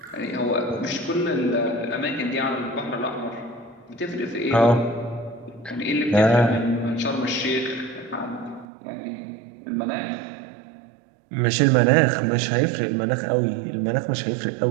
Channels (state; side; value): drops out; left; at 8.7 s